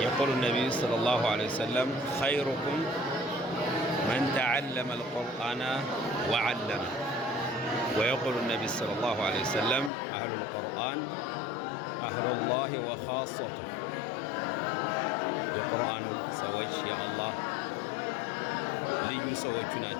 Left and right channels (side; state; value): right; drops out; at 9.9 s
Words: النبي صلى الله عليه وسلم: خيركم من تعلم القرآن وعلمه. ويقول النبي صلى الله عليه وسلم: أهل القرآن أهل الله وخاصته. የቁርአን ሰዎች የአላህ ልዩ ሰዎቹ